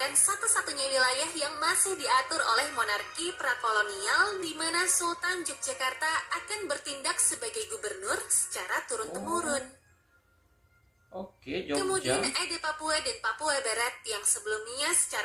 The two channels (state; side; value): identical; both; correlation 1.00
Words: satu-satunya wilayah yang masih diatur oleh monarki prakolonial di mana Sultan Yogyakarta akan bertindak sebagai gubernur secara turun-temurun. Jogja. Kemudian ada Papua dan Papua Barat yang sebelumnya